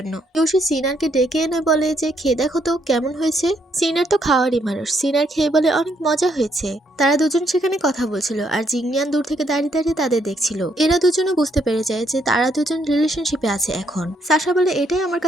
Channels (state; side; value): normal; both; correlation 0.73